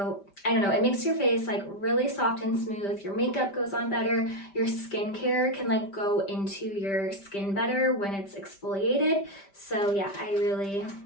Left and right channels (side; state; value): right; late; 5.1 ms